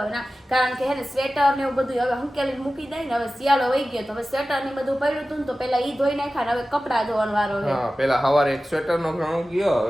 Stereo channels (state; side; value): normal; both; correlation 0.95